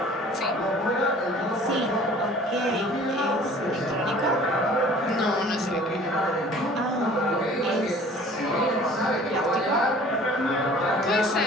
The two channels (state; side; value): normal; both; correlation 0.49